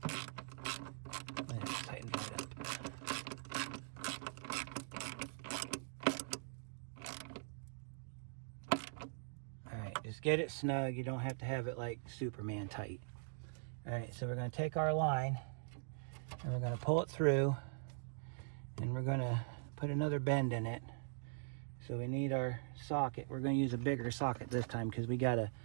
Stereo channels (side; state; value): left; silent; digital silence